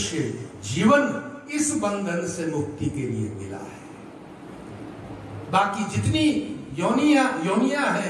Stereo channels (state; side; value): identical; both; correlation 1.00